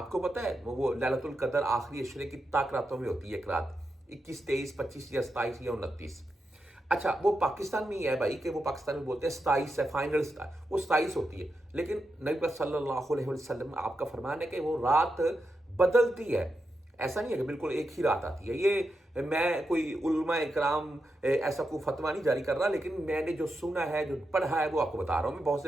کو پتہ ہے وہ لیلۃ القدر آخری عشرے کی طاق راتوں میں ہوتی ہے، ایک رات 21 23 25 یا 27 یا 29۔ اچھا وہ پاکستان میں ہی ہے بھائی، کہ وہ پاکستان میں بولتے ہیں 27 ہے، فائنل وہ 27 ہوتی ہے، لیکن نبی صلی اللہ علیہ وسلم آپ کا فرمان ہے کہ وہ رات بدلتی ہے، ایسا نہیں ہے کہ بالکل ایک ہی رات آتی ہے۔ یہ میں کوئی علماء اکرام ایسا کوئی فتویٰ نہیں جاری کر رہا، لیکن میں نے جو سنا ہے جو پڑھا ہے وہ آپ کو بتا رہا ہوں میں، بہت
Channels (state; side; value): normal; both; correlation 0.87